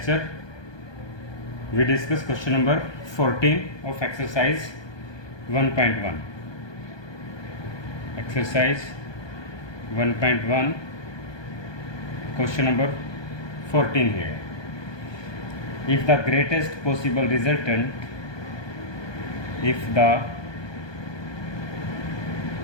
we discuss question number 14 of exercise 1.1. Exercise 1.1, question number 14 here. If the greatest possible resultant,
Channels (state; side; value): late; right; 1.2 ms